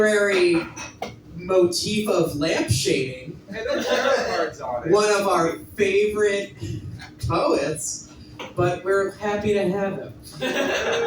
motif of lampshading. One of our favorite poets, but we're happy to have him.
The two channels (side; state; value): both; identical; correlation 1.00